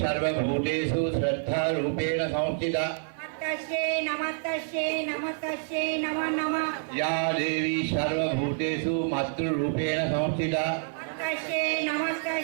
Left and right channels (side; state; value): left; silent; 59 dB below the other